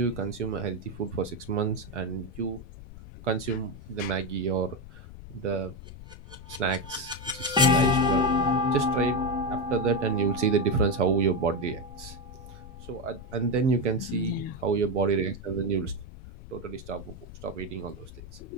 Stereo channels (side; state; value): left; noise; rumble, 15 dB below the sound